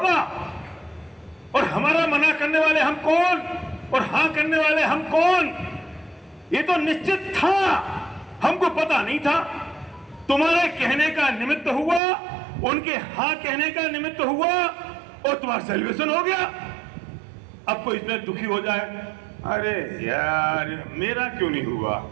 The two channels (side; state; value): left; drops out; at 12.0 s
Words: और हमारा मना करने वाले हम कौन और हाँ करने वाले हम कौन, ये तो निश्चित था, हमको पता नहीं था। तुम्हारे कहने का निमित्त हुआ, उनके हाँ कहने का निमित्त हुआ और तुम्हारा सेलिब्रेशन हो गया। अब कोई इसमें दुखी हो जाए, अरे यार मेरा क्यों नहीं हुआ,